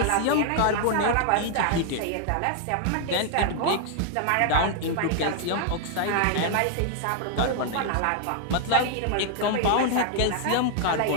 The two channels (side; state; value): both; different; correlation 0.00